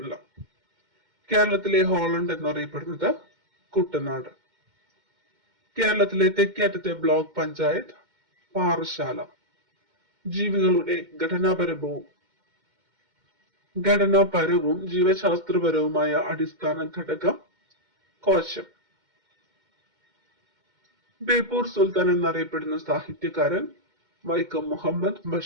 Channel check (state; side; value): late; left; 2.1 ms